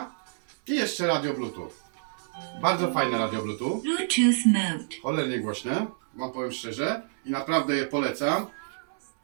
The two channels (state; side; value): silent; left; 60 dB below the other